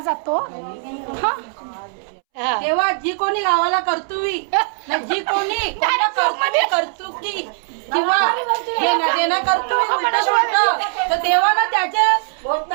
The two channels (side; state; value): left; silent; 66 dB below the other